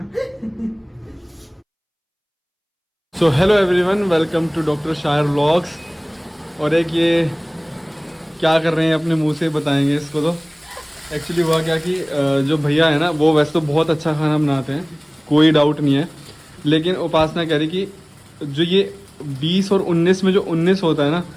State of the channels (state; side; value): identical; both; correlation 1.00